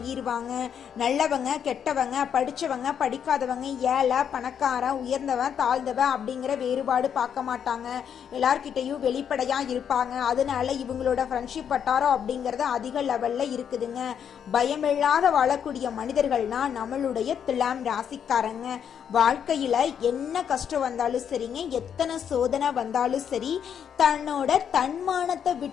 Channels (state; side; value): quieter; right; 8.2 dB